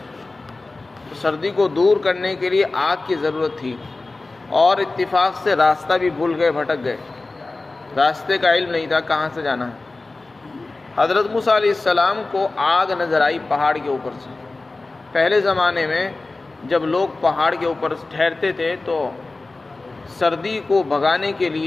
تو سردی کو دور کرنے کے لیے آگ کی ضرورت تھی، اور اتفاق سے راستہ بھی بھول گئے، بھٹک گئے، راستے کا علم نہیں تھا کہاں سے جانا ہے۔ حضرت موسیٰ علیہ السلام کو آگ نظر آئی پہاڑ کے اوپر سے۔ پہلے زمانے میں جب لوگ پہاڑ کے اوپر ٹھہرتے تھے تو سردی کو بھگانے کے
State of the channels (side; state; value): right; quieter; 3.3 dB